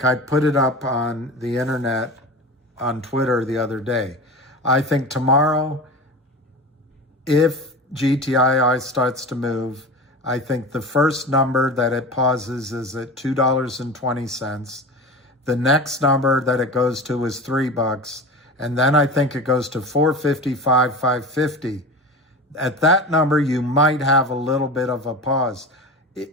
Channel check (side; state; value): both; normal; correlation 0.30